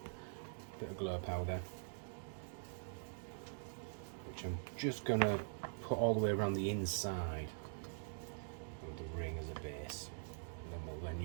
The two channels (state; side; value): silent; left; digital silence